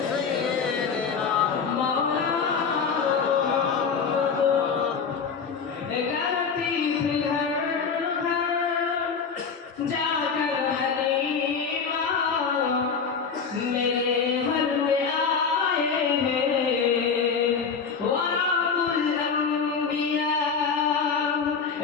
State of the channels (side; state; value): right; quieter; 5.8 dB